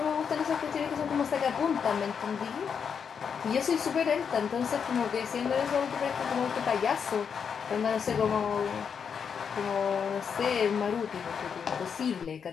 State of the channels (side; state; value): right; quieter; 6.8 dB